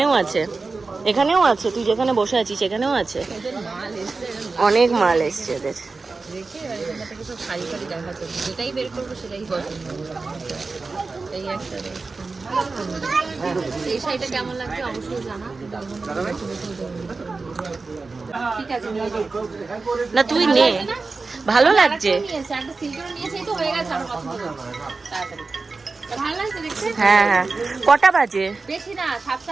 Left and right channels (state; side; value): quieter; left; 4.0 dB